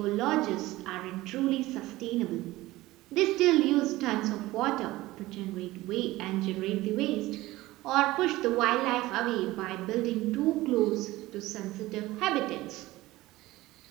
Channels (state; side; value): quieter; left; 18.1 dB